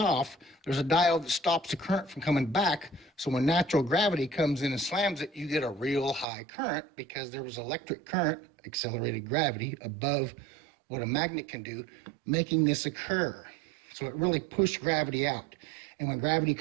there's a diode that stops the current from coming back. So when natural gravity comes in and slams it, you get a real high current because there was electric current, accelerated gravity, above what a magnet can do, making this occur. So it really pushed gravity out. And when gravity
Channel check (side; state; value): left; drops out; at 6.2 s